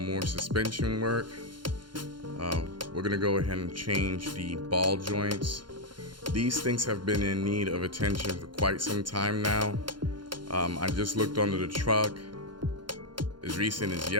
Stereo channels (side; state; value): left; late; 0.72 ms